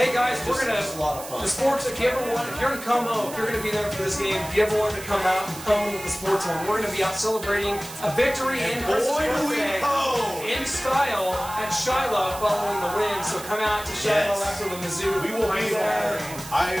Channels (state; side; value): noise; right; hiss, 13 dB below the sound